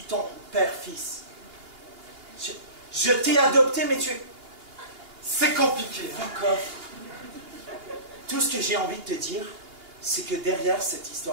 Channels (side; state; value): left; late; 2.8 ms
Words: père-fils. Je t'ai adopté, mais tu es... C'est compliqué. Fuck off. Tout ce que j'ai envie de te dire, c'est que derrière cette